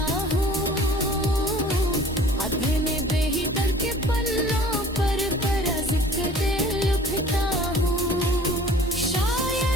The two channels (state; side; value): normal; both; correlation 0.49